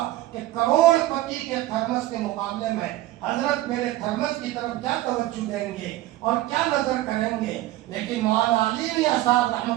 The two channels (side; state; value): left; quieter; 16.5 dB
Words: کہ کروڑ پتی کے تھرمس کے مقابلے میں حضرت میرے تھرمس کی طرف کیا توجہ دیں گے اور کیا نظر کریں گے، لیکن مولانا علی میاں صاحب